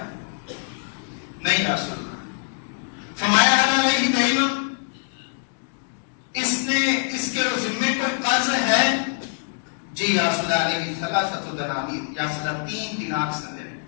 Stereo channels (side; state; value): right; silent; digital silence